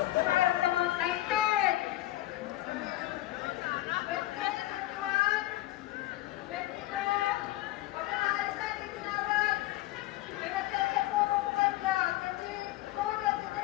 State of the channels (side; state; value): right; quieter; 16.4 dB